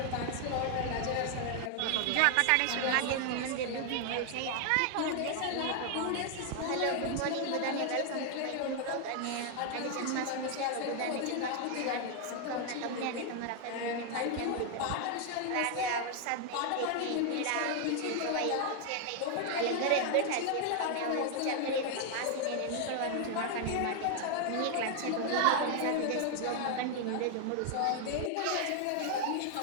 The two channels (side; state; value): both; different; correlation 0.00